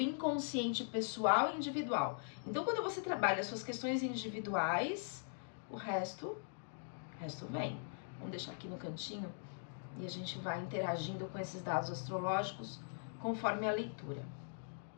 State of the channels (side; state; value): right; silent; digital silence